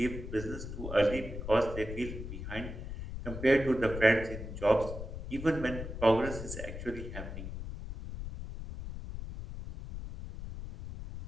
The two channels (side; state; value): left; noise; rumble, 8 dB below the sound